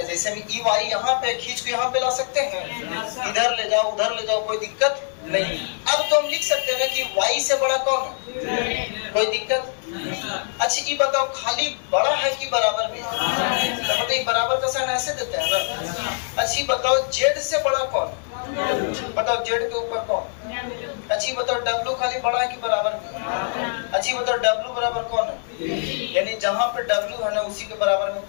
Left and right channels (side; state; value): right; silent; 63 dB below the other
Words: जैसे हम ई वाई यहाँ पे खींच के यहाँ पे ला सकते हैं, इधर ले जाओ उधर ले जाओ, कोई दिक्कत नहीं। अब तो हम लिख सकते हैं ना कि y से बड़ा कौन है, कोई दिक्कत। अच्छा ये बताओ खाली बड़ा है कि बराबर भी है, तो बताइए बराबर का साइन ऐसे देते हैं ना। अच्छा बताओ z से बड़ा कौन है, बताओ z के ऊपर कौन। अच्छा बताओ w खाली बड़ा है कि बराबर भी है। अच्छा बताओ w बराबर कौन है, यानी जहां पे W है ना उसी के बराबर में